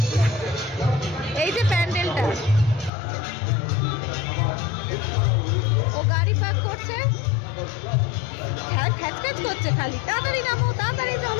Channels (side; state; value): right; drops out; at 2.9 s